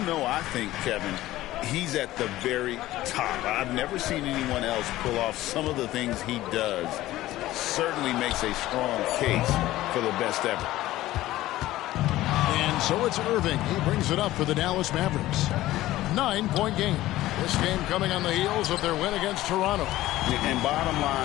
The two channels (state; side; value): quieter; right; 15.9 dB